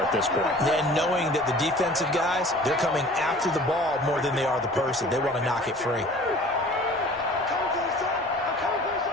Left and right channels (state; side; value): normal; both; correlation 0.46